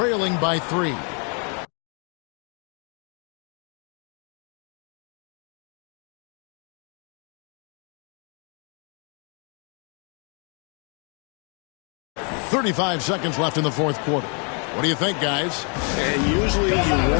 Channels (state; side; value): quieter; right; 38.0 dB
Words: by 3. .35 seconds left in the fourth quarter. What do you think, guys? And usually you